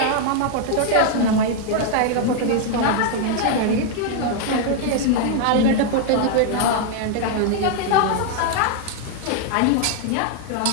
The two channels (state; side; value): different; both; correlation 0.00